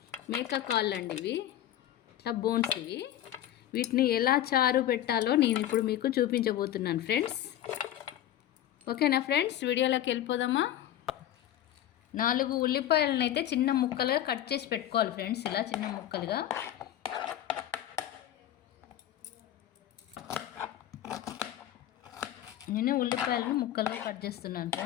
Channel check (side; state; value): right; quieter; 12.1 dB